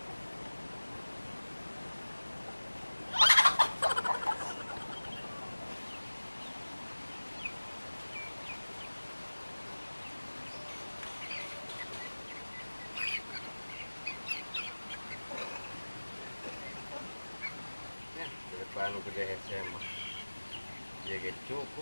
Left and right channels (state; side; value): inverted; both; correlation -1.00